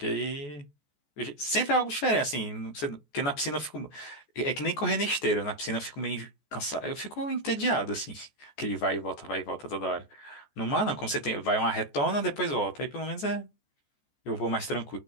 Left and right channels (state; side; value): late; right; 14 ms